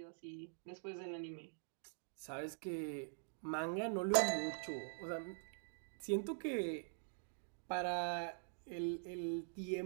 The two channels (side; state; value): left; silent; digital silence